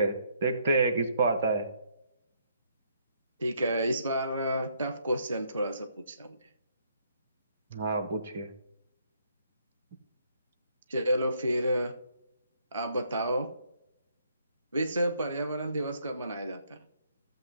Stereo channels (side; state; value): both; inverted; correlation -0.70